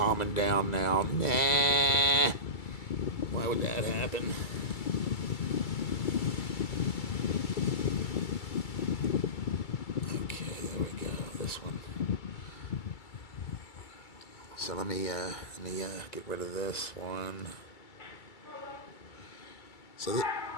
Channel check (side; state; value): right; late; 2.3 ms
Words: down now. Nah. Why would that happen? Okay, there we go. This one. So let me get rid of this one. So